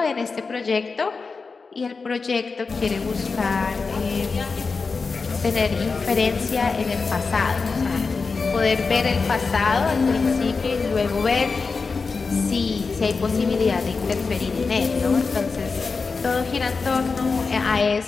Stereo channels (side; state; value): right; quieter; 4.5 dB